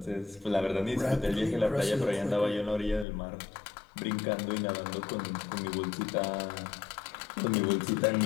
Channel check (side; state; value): right; drops out; at 3.1 s